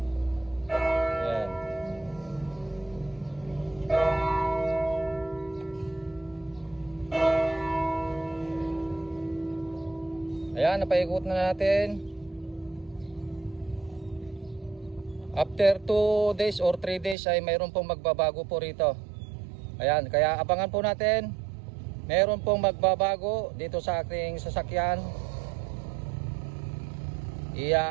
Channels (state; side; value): drops out; left; at 17.2 s